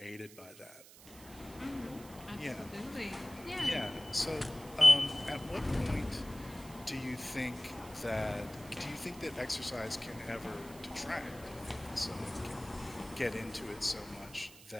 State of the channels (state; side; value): noise; right; hiss, 19 dB below the sound